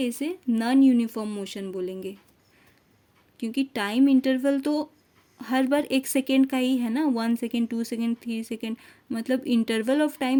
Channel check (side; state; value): both; identical; correlation 1.00